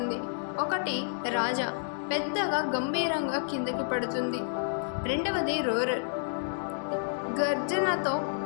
ఒకటి రాజా, పెద్దగా గంభీరంగా కిందకి పడుతుంది. రెండవది రోరర్, గర్జనతో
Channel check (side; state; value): right; silent; digital silence